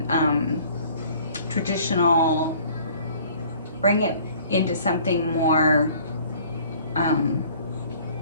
traditional. Bring it into something more.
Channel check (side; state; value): both; inverted; correlation -0.53